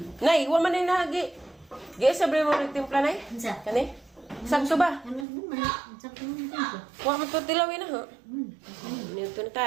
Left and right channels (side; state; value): left; drops out; at 5.2 s